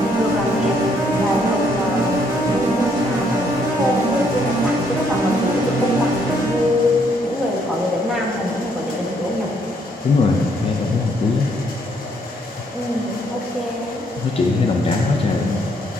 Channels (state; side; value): normal; both; correlation 0.70